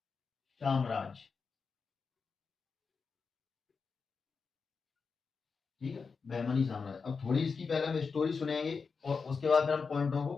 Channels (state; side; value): quieter; right; 5.1 dB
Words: साम्राज्य, ठीक है, बहमनी साम्राज्य। अब थोड़ी इसकी पहले हम स्टोरी सुनेंगे और उसके बाद फिर हम पॉइंटों को